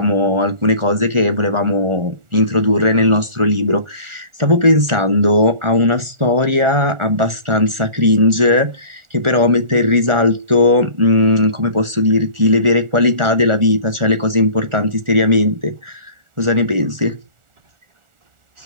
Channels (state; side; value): late; left; 1.4 ms